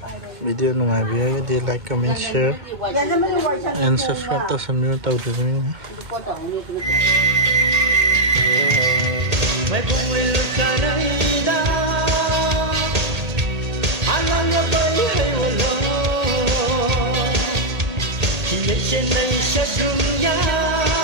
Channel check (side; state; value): left; late; 1.8 ms